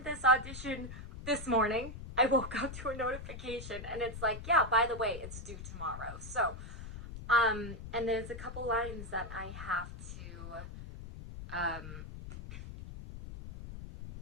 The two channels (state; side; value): noise; left; rumble, 10 dB below the sound